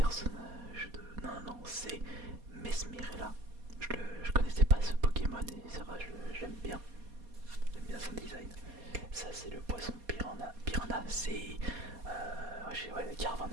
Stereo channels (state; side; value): late; left; 4.2 ms